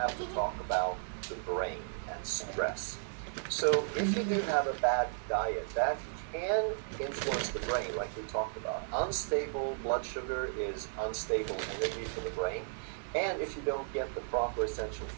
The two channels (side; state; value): left; silent; digital silence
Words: to talk about the brain and stress. So if you do have a bad diet, that can influence the brain, like we talked about. Unstable blood sugar is unstable energy for the brain. And if you don't get the proper essential